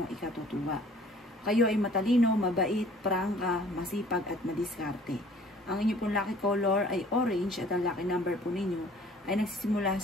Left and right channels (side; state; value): both; normal; correlation 0.53